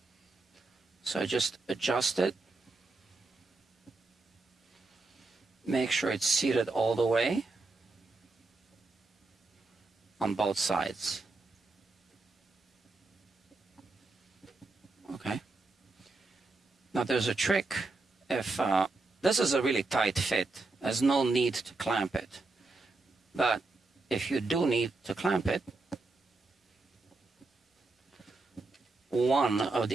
So I just adjust it. Make sure it's seated all the way on both sides. Okay. Now there's a trick. If this is a really tight fit, there's no need to clamp it. But if you do need to clamp it, one of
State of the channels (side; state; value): left; quieter; 3.4 dB